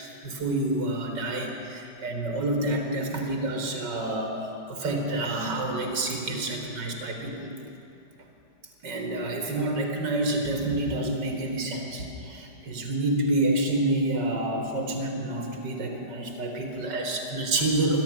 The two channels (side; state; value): left; late; 5.4 ms